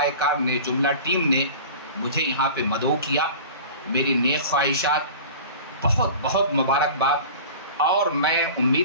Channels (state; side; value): inverted; both; correlation -0.38